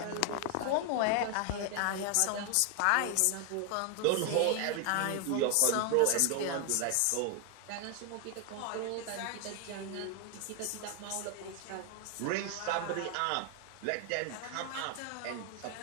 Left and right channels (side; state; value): both; different; correlation 0.00